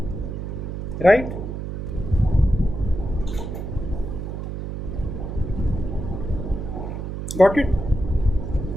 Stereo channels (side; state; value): right; noise; hum, 5 dB below the sound